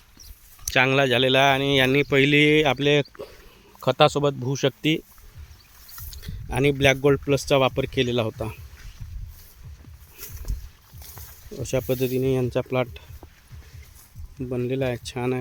चांगला झालेला आहे आणि यांनी पहिली आपले खतासोबत भूशक्ती आणि ब्लॅक गोल्ड प्लसचा वापर केलेला होता। अशा पद्धतीने यांचा प्लॉट बनलेला आहे। छान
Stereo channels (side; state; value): both; identical; correlation 1.00